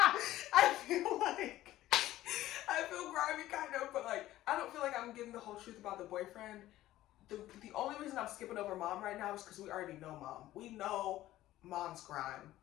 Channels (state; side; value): quieter; right; 15.0 dB